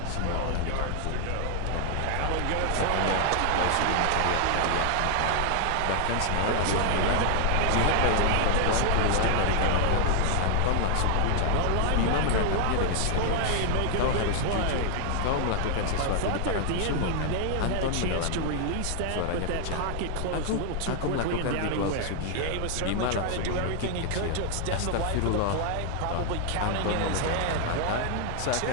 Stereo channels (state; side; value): different; both; correlation 0.00